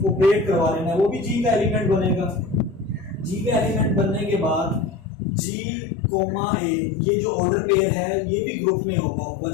ऑपरेट करवा लेना, वो भी जी का एलिमेंट बनेगा। जी का एलिमेंट बनने के बाद जी कोमा ए ये जो ऑर्डर पेयर है ये भी ग्रुप में होगा।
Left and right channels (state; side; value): drops out; right; at 5.1 s